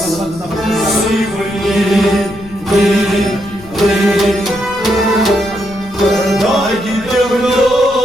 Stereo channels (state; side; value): noise; left; rumble, 19 dB below the sound